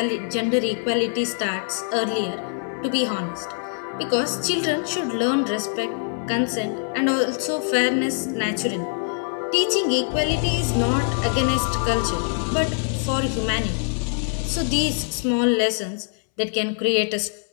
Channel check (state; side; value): silent; right; 63 dB below the other